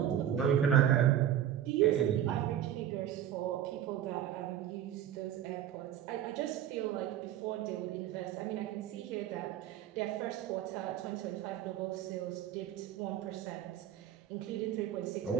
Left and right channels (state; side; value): quieter; left; 10.7 dB